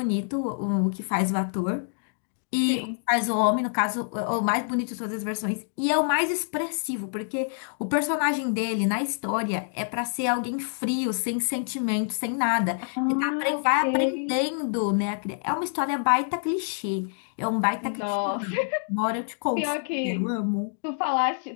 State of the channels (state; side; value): silent; right; digital silence